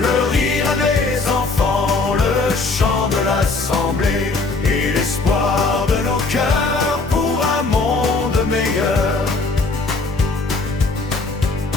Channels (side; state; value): right; quieter; 3.7 dB